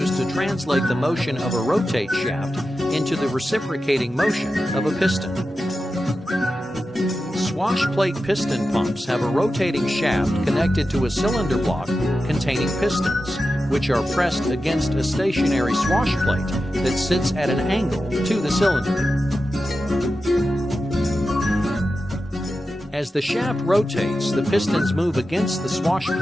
to translate the motion of a rotate shaft into the reciprocating motion of a piston. Swash plate piston pumps have a rotating shaft connected to a cylinder block containing pistons, which are pressed against a stationary swash plate that sits at an angle to the cylinder. As the shaft rotates, the pistons move against the swash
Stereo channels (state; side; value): normal; both; correlation 0.92